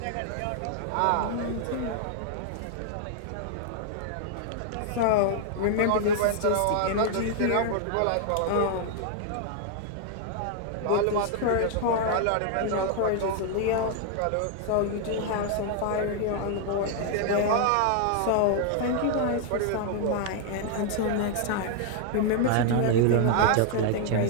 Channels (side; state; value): both; different; correlation 0.00